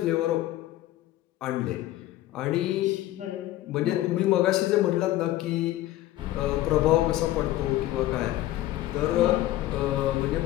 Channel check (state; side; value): quieter; right; 15.0 dB